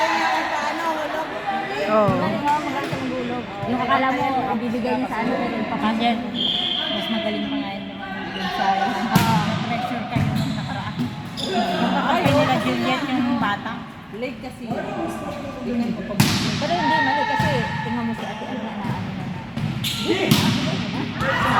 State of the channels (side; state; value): both; identical; correlation 1.00